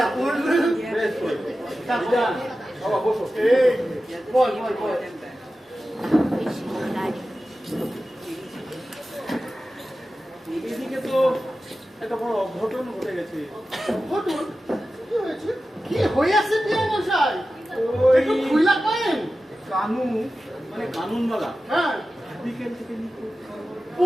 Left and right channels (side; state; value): both; normal; correlation 0.94